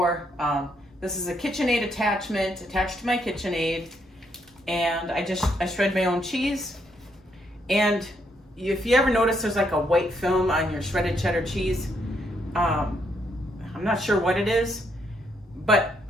This is a KitchenAid attachment attached to my KitchenAid, and I shred my own cheese. And if you ever notice there's like a white film on your shredded cheddar cheese, I'm not sure what it is, but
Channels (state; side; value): normal; both; correlation 0.75